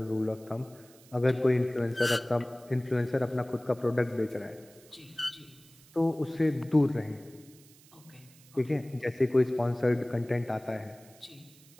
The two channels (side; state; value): right; noise; hiss, 25 dB below the sound